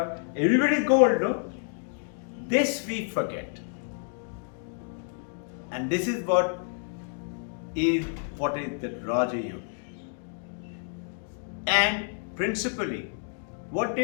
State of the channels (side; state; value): right; silent; 59 dB below the other